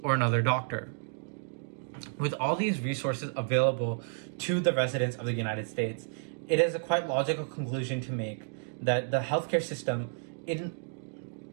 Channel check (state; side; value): silent; left; digital silence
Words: or another doctor. With all these resources available to the residents of the United States, it is a quite logical conclusion to make that the healthcare system and